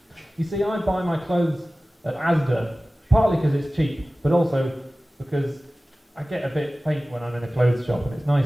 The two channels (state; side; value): normal; both; correlation 0.97